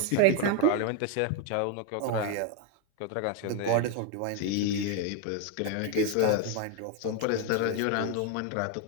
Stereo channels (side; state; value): both; different; correlation 0.01